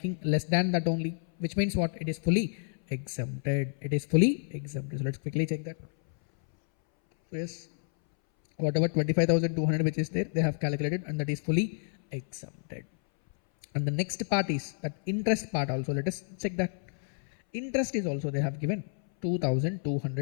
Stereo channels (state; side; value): silent; right; 58 dB below the other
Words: less than that only, which means what? It is fully exempted. It is fully exempted. So let's quickly check that. So yes, whatever 25,200 which is there, they have calculated, and that is fully exempted. And the next part is that interest part also. Let us check that. Interest is also they have given